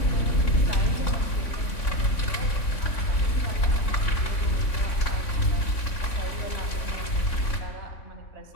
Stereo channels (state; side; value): late; right; 3.6 ms